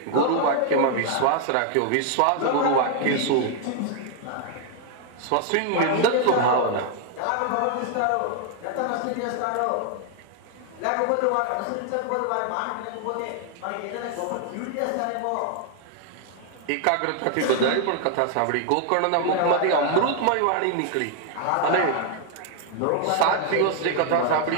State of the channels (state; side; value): different; both; correlation 0.00